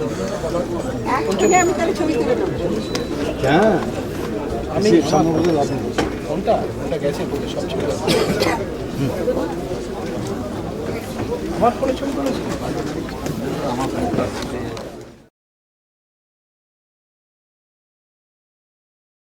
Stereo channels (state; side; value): identical; both; correlation 1.00